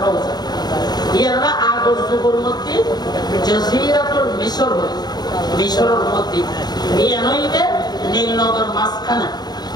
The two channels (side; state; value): right; late; 0.20 ms